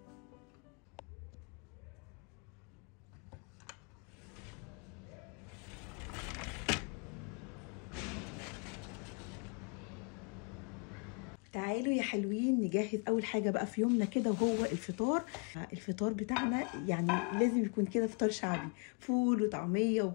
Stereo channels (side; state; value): right; quieter; 36.6 dB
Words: تعالوا يا حلوين نجهز اول حاجه بقى في يومنا كده، وهو الفطار بتاعنا. يعني لازم يكون كده فطار شعبي، فول وطعميه